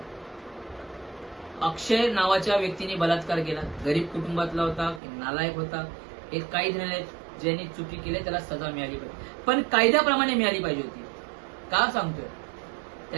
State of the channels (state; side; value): drops out; left; at 5.0 s